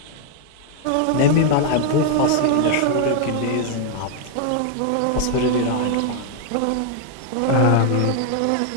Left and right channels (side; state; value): both; different; correlation 0.00